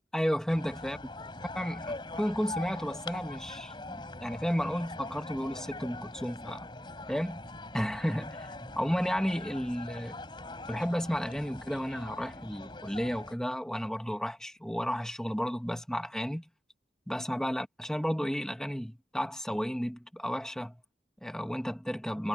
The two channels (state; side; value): normal; both; correlation 0.94